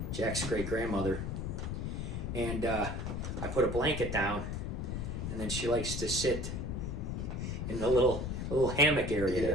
Jack's great grandmother. And I put a blanket down, and then she likes to sit in the little hammock area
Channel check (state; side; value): noise; left; rumble, 3 dB below the sound